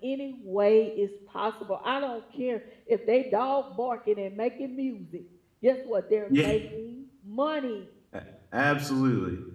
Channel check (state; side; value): identical; both; correlation 1.00